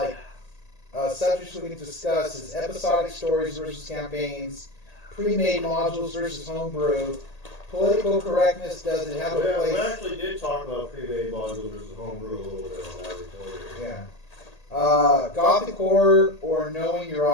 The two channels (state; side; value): late; right; 1.8 ms